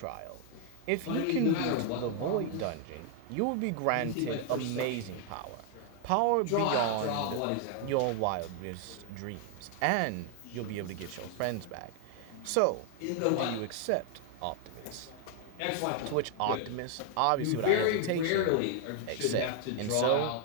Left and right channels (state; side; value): different; both; correlation 0.00